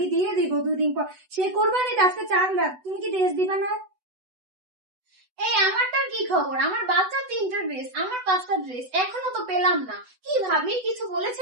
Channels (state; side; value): late; left; 8.0 ms